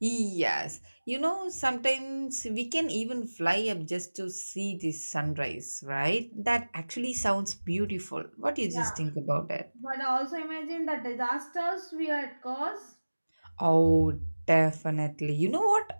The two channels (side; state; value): both; inverted; correlation -1.00